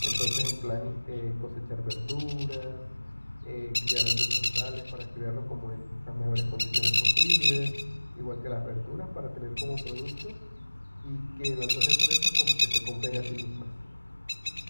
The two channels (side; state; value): both; inverted; correlation -1.00